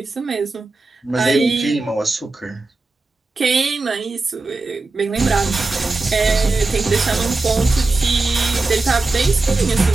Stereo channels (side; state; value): left; quieter; 3.4 dB